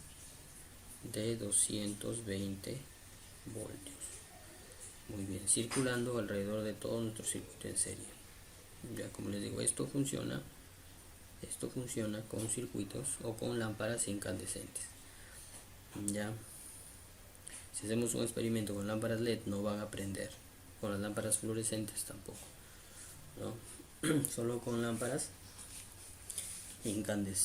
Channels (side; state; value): both; identical; correlation 1.00